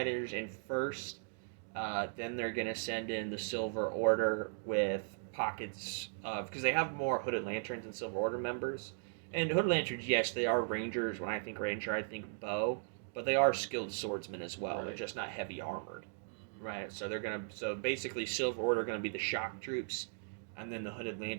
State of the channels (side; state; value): left; silent; digital silence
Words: in first. Then they're gonna send in the Silver Order with pockets of, because they have more Hooded Lanterns and Silver Order members. And Hooded Lanterns, yes, they are Rangers. When I think Ranger, I think bow, but they are skilled swordsmen as well. Right. They're just not heavy armored, right? So basically Silver Order are gonna be the shock troops, and then the Hooded